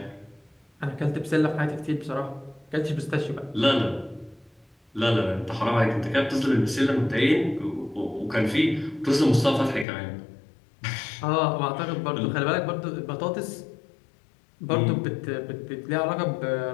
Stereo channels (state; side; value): drops out; right; at 9.9 s